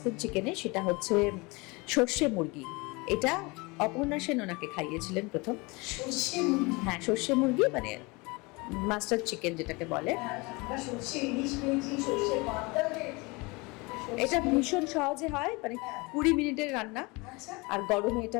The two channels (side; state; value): right; quieter; 26.1 dB